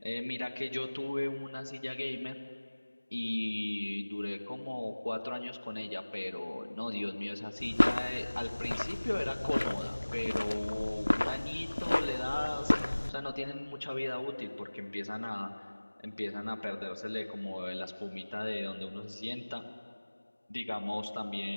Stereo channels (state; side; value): inverted; both; correlation -1.00